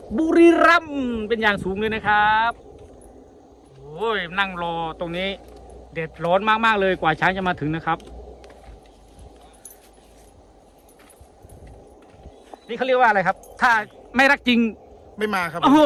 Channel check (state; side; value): identical; both; correlation 1.00